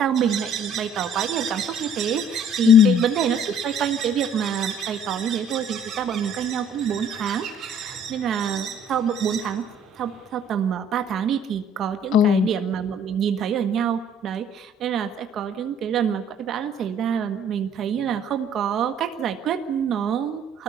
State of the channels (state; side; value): normal; both; correlation 0.56